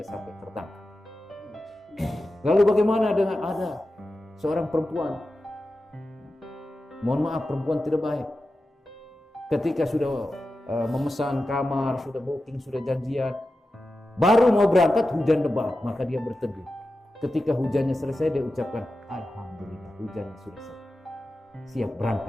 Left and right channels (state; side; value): normal; both; correlation 0.92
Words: sampai tertangkap. Lalu bagaimana dengan ada seorang perempuan, mohon maaf, perempuan tidak baik, ketika sudah memesan kamar, sudah booking, sudah janjian, baru mau berangkat hujan lebat, maka dia berteduh. Ketika hujannya selesai, dia ucapkan alhamdulillah hujannya sudah selesai, siap